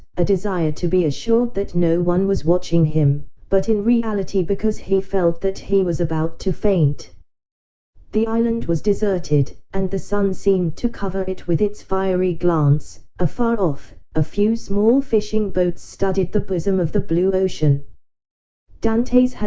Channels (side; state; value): both; identical; correlation 1.00